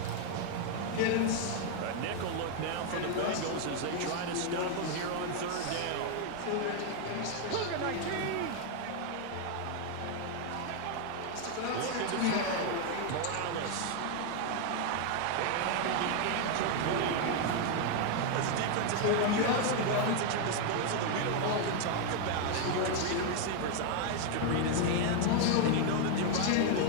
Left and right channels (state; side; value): different; both; correlation 0.00